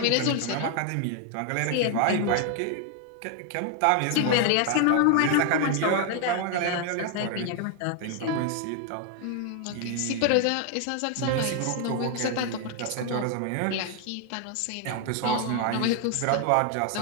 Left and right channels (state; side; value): different; both; correlation 0.00